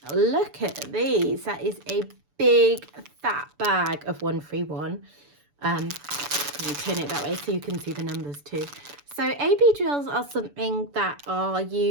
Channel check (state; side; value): late; left; 6.9 ms